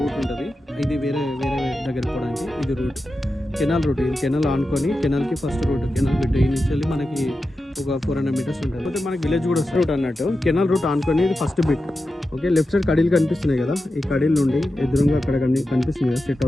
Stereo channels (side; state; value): both; normal; correlation 0.91